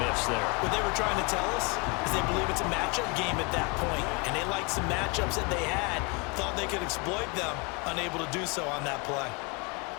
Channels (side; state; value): right; quieter; 30.5 dB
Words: missed there. What they were trying to tell us is they believe it's a matchup game at that point, and they liked some matchups that they had, thought they could exploit them, unable to do so on that play.